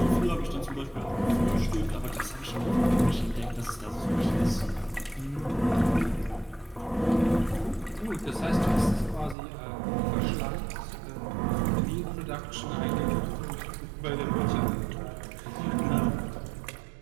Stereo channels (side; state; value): left; drops out; at 9.3 s